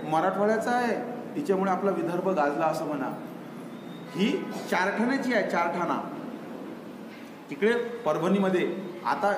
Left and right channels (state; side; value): identical; both; correlation 1.00